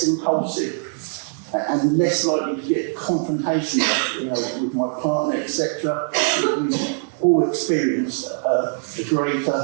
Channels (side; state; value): left; silent; digital silence